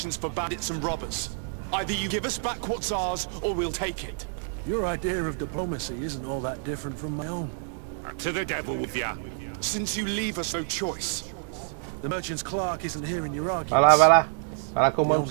for bandits and robbers. Either you give us back what's ours, or we'll take it. Your idea of diplomacy isn't all that different from my own. To the devil with ya. Since you leave us no choice. The merchant's clerk isn't hearing your arguments. Vai lá, vai lá. Vai lá que eu mando pra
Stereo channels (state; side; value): silent; left; 60 dB below the other